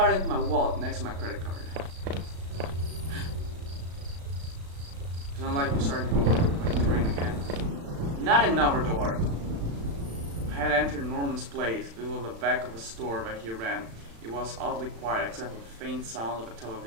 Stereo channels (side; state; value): left; late; 36 ms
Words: into my wallet next to my credit card. It's not like we're starting to go over my terrain again. Not another door. I had entered Norman's place. It was the back of a store that he ran. It was oddly quiet except for the faint sound of a